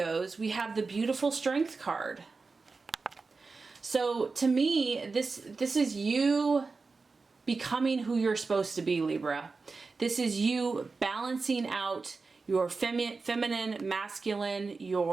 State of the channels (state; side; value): quieter; left; 4.2 dB